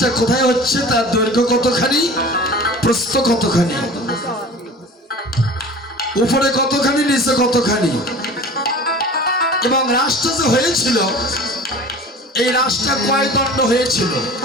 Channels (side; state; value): both; normal; correlation 0.40